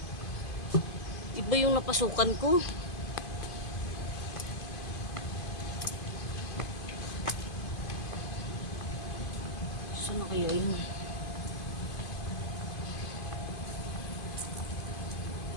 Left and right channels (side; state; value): right; late; 2.5 ms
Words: iba yung napasukan ko. Saan na kaya yun?